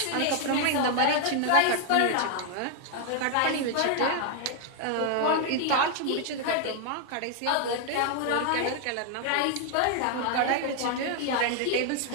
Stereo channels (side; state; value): both; different; correlation 0.00